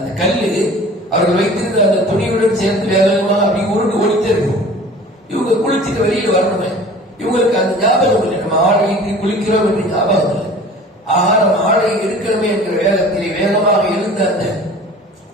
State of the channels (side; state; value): both; normal; correlation 0.44